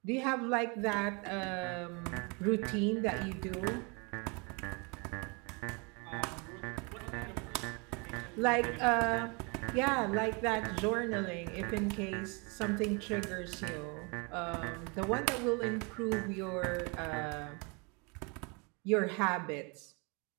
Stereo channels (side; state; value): left; quieter; 31.4 dB